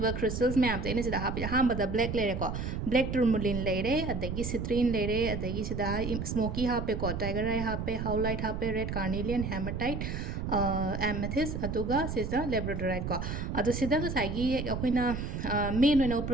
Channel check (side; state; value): right; noise; rumble, 4 dB below the sound